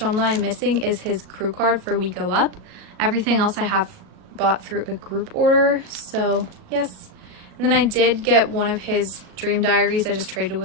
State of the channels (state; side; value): late; left; 37 ms